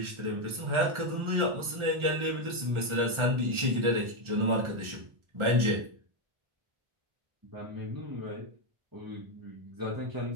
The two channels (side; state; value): left; late; 1.4 ms